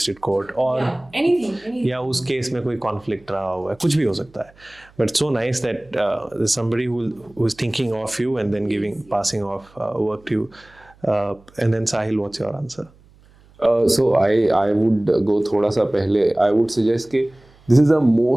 court, और anything. या उस केस में कोई कॉन्फ्लिक्ट रहा हुआ है, कुछ भी हो सकता है. But so nice that somebody who is thinking of you and then passing off work to you. And then Sahil, what's your answer? So I would go थोड़ा सा पहले. I would suggest कि this is the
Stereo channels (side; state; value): right; noise; hum, 28 dB below the sound